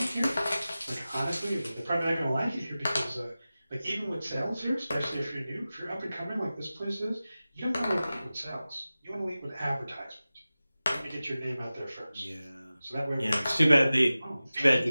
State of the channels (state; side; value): inverted; both; correlation -0.96